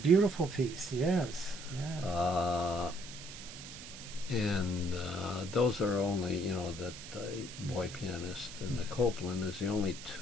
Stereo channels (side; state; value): right; noise; hiss, 13 dB below the sound